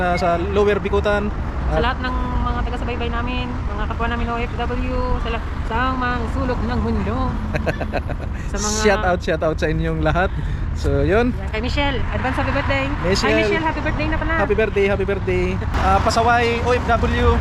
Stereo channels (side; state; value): both; identical; correlation 1.00